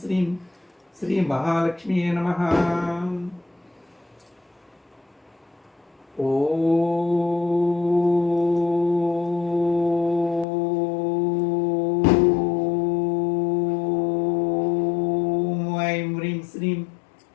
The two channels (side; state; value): right; drops out; at 10.5 s